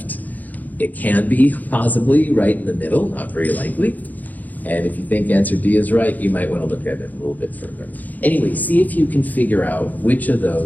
It can be possibly right in the middle, not very likely. And if you think answer D is right, you might want to look at it a little bit further. Anyway, see if you can figure out which of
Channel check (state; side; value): late; right; 0.081 ms